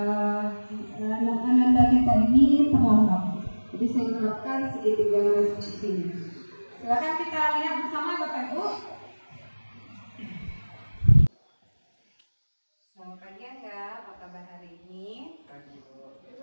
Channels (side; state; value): both; inverted; correlation -1.00